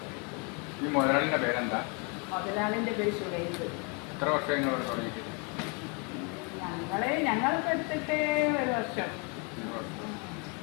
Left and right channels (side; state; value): right; quieter; 33.7 dB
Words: ഈ മുതലാളിൻ്റെ പേരെന്താ? മുതലാളിൻ്റെ പേര് ശുഭൈബ്. എത്ര വർഷം നിങ്ങൾ ഇവിടെ തുടങ്ങിയിട്ട്? ഞങ്ങളിപ്പോൾ എടുത്തിട്ട് 1 വർഷം.